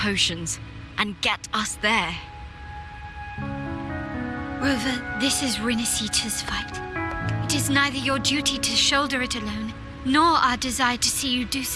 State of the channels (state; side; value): identical; both; correlation 1.00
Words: and get us there? Rover, this is Rinasita's fight. It is neither your duty to shoulder it alone, nor our desire to see you do